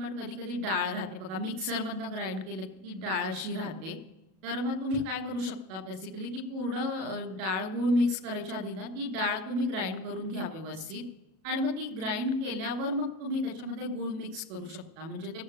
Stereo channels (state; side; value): late; left; 37 ms